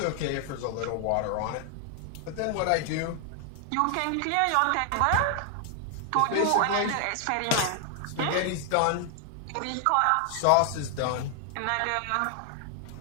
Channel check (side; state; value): both; different; correlation 0.00